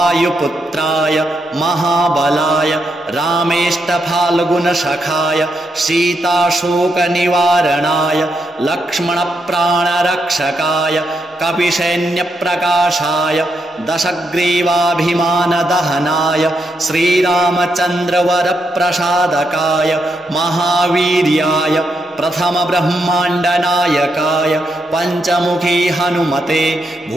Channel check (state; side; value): normal; both; correlation 0.81